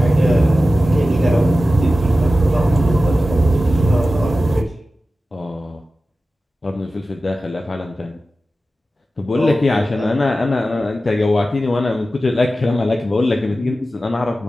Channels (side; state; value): both; normal; correlation 0.94